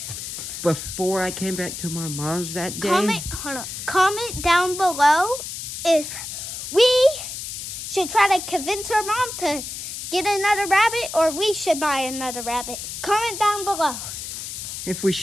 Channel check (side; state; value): left; noise; hiss, 7 dB below the sound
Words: before I came back to my mom's that day. Comment down below if we should try to convince her mom to get another rabbit or we should buy another rabbit. Comment down below. If we